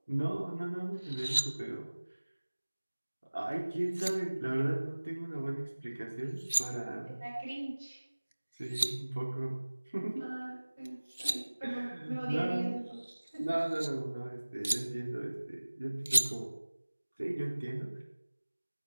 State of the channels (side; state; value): both; inverted; correlation -1.00